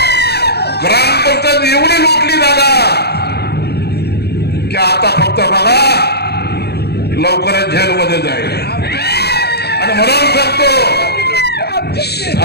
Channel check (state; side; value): late; right; 0.48 ms